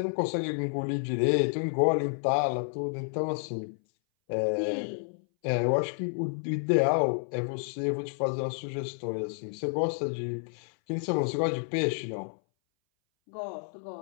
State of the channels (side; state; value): right; silent; 58 dB below the other